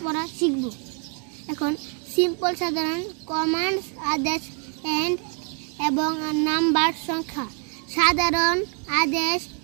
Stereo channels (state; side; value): quieter; left; 39.5 dB